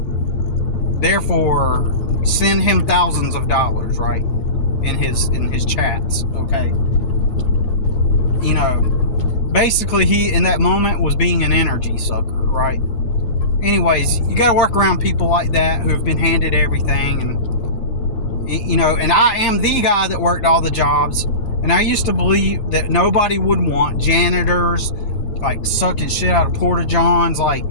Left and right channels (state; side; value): late; right; 9.9 ms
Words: send him thousands of dollars, right, in his chats, okay? You know, basically he in that moment was being an energy sucker, right? Anyways, you gotta work around people like that who've been handed everything, and you know, and I am the guy that worked all the jobs. And I used to believe that nobody would want janitors, like sucking shit out of porta-johns, like